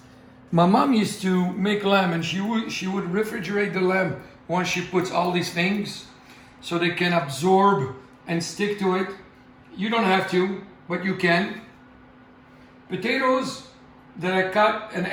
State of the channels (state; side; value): identical; both; correlation 1.00